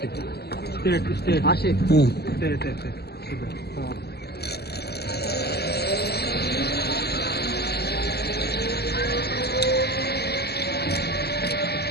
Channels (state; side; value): late; right; 0.47 ms